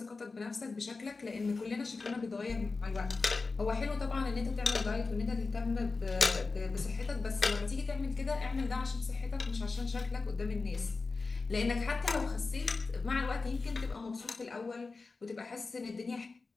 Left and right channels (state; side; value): quieter; right; 4.0 dB